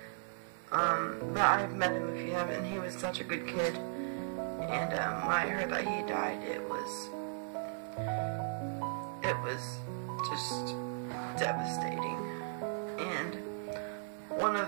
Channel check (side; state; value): left; silent; digital silence